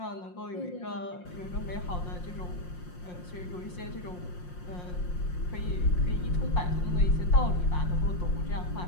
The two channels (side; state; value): right; late; 5.6 ms